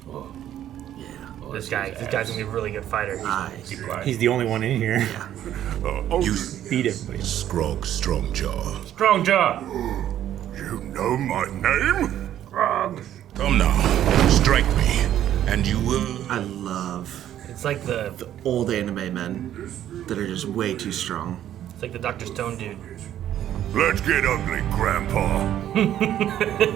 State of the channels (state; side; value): quieter; left; 11.5 dB